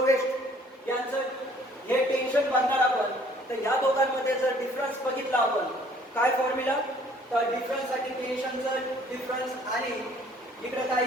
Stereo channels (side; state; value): both; normal; correlation 0.58